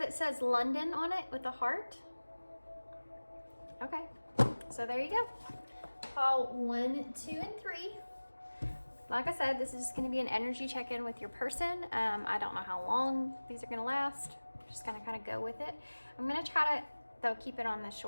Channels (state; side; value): inverted; both; correlation -1.00